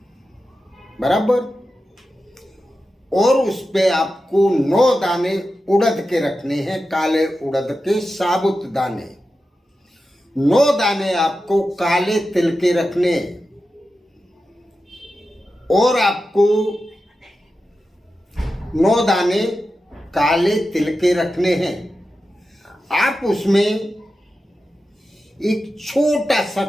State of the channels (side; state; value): both; normal; correlation 0.92